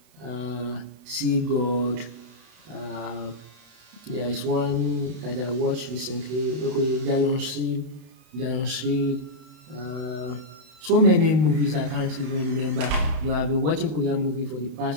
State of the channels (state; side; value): late; left; 32 ms